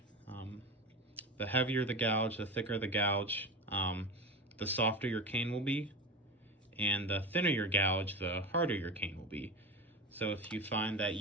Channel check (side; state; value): both; normal; correlation 0.25